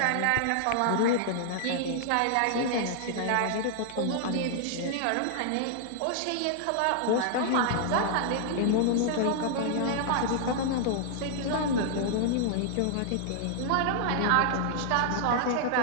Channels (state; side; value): different; both; correlation -0.01